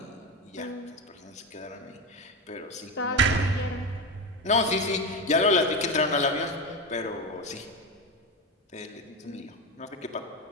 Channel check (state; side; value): normal; both; correlation 0.17